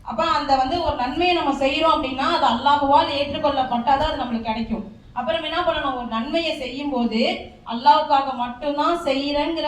அப்ப அந்த ஒரு நன்மையை நம்ம செய்யறோம் அப்படின்னா அது அல்லாஹ்வால் ஏற்றுக்கொள்ளப்பட்டாதான் அது நம்மளுக்கு கிடைக்கும். அப்புறம் என்ன பண்ணணும், ஒரு நன்மையை செய்யும் போது அல்லாஹ்வுக்காக மட்டும்தான் செய்யறேங்கிற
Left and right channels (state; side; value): identical; both; correlation 1.00